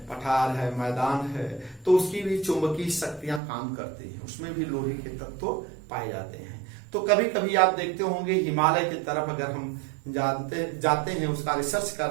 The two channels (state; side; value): drops out; left; at 3.4 s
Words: पठार है, मैदान है, तो उसकी भी चुंबकीय शक्तियां काम करती हैं, उसमें भी लोहे के तत्व पाए जाते हैं। तो कभी कभी आप देखते होंगे हिमालय की तरफ अगर हम जाते हैं, उसका रिसर्च